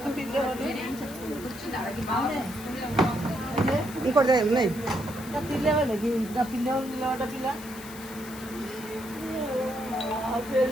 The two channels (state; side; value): noise; left; hiss, 16 dB below the sound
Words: పిల్లవాళ్ళు ఇంకోటి ఉన్నాయి. పిల్లవాళ్ళు ఇంకా పిల్లవాళ్ళు నిలబడ్డ పిల్ల